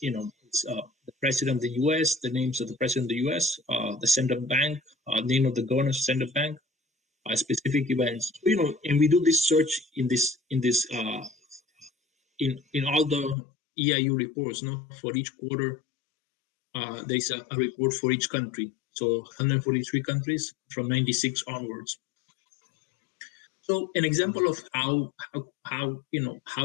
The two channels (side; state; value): right; drops out; at 13.4 s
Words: it's the president of the U.S., the names of the president of the U.S., the central bank, name of the governor of the central bank, specific events. And we do this search in all the EIU reports. For each quarter, there's a report for each country. So 143 countries from 96 onwards. So an example of how